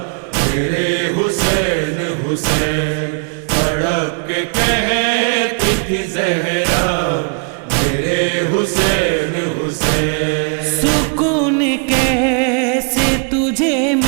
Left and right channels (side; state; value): left; quieter; 39.2 dB